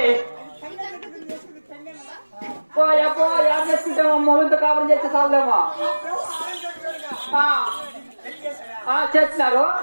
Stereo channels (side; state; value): both; inverted; correlation -1.00